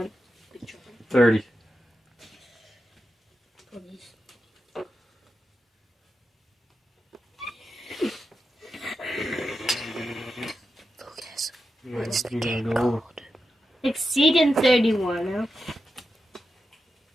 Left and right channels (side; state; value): both; normal; correlation 0.89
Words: big trouble. 30. What's the You gotta game go called? over. Exceeding 31.